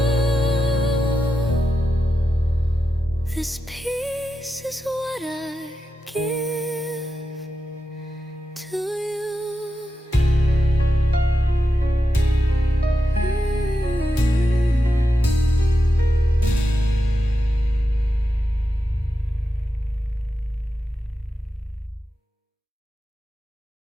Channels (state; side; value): normal; both; correlation 0.89